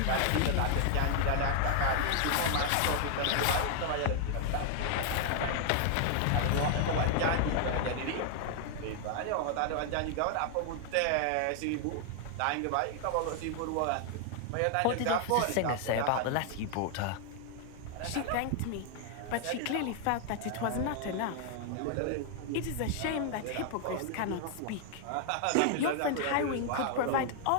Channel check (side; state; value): both; different; correlation 0.00